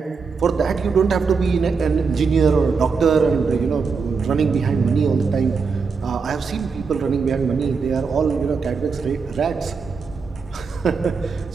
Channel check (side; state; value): left; quieter; 5.1 dB